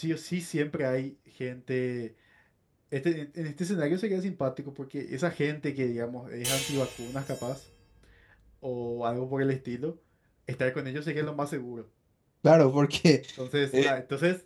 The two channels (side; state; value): both; identical; correlation 1.00